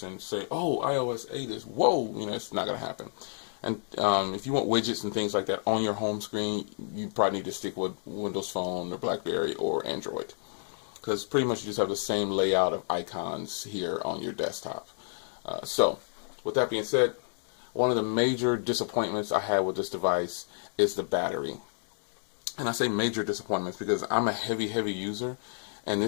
say, oh, iOS 8 is, whoa, you know, it's not going to happen. And if you want widgets and things like that on your home screen, you probably need to stick with Windows Phone or BlackBerry or Android, because pretty much you just have the same layout of icons here on your desktop. So with that being said, one of the major disappointments I had with this device is the battery. And I say major disappointments because I'm a heavy user, and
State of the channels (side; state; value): right; silent; digital silence